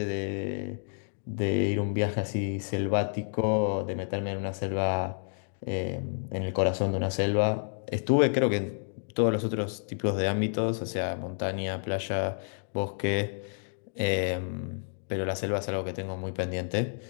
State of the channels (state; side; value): silent; right; digital silence